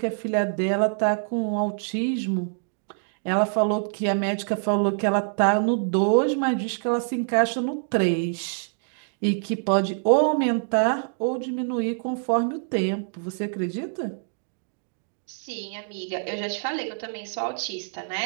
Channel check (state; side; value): silent; left; digital silence